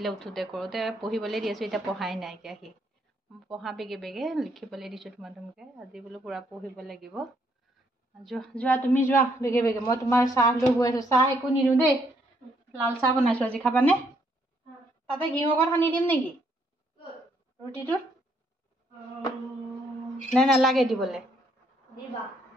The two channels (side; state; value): both; normal; correlation 0.71